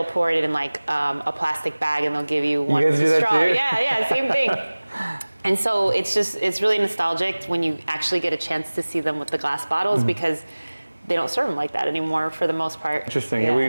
pour it in like a plastic bag and they'll give you one with a straw. Yeah, same thing. And so it's really nostalgic when you actually get a chance to see them with the glass bottles because they don't serve them like that anymore for the most part. Interesting.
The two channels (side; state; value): both; inverted; correlation -1.00